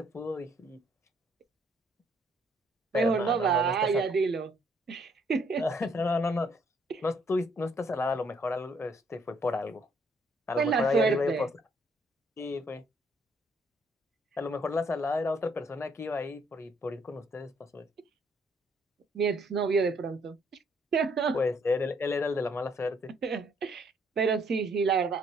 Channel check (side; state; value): both; normal; correlation 0.67